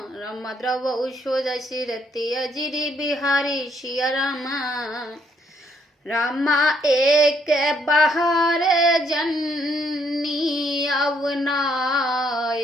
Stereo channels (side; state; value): both; normal; correlation 0.70